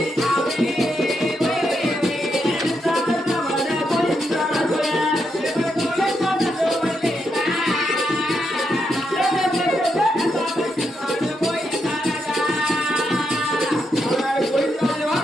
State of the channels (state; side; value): normal; both; correlation 0.81